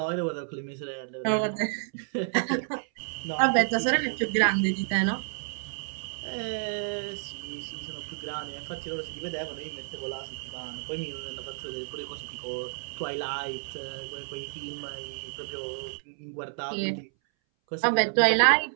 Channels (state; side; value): silent; left; 58 dB below the other